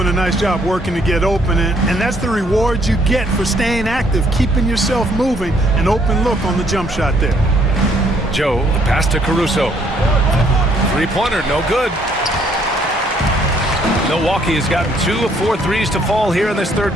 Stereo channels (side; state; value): both; normal; correlation 0.66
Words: a nice job working to get open, and that's the reward you get for staying active, keeping yourself moving, an open look on the jump shot there. Joe, the pass to Caruso. Three-pointer, no good. Milwaukee has gotten 2 of 4 threes to fall here in this third